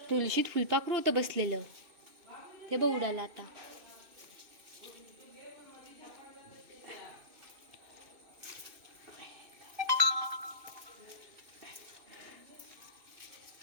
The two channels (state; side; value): late; left; 2.6 ms